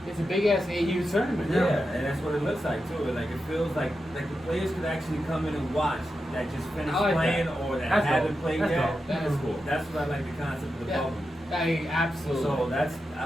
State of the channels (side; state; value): both; normal; correlation 0.89